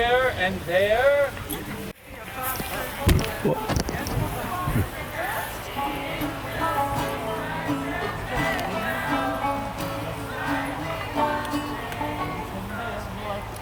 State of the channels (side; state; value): both; identical; correlation 1.00